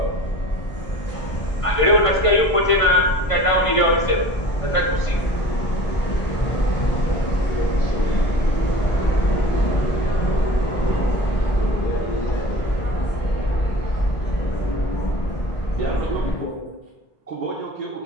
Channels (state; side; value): late; right; 1.5 ms